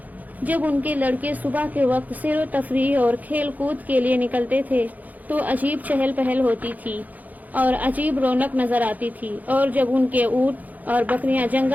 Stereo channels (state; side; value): late; left; 0.080 ms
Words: جب ان کے لڑکے صبح کے وقت سیر و تفریح اور کھیل کود کے لیے نکلتے تھے تو عجیب چہل پہل ہوتی تھی اور عجیب رونق نظر آتی تھی، اور جب ان کے اونٹ اور بکریاں